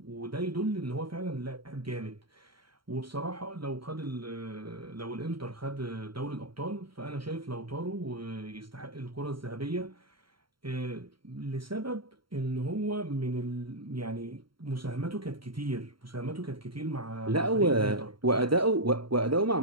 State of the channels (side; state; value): left; late; 0.73 ms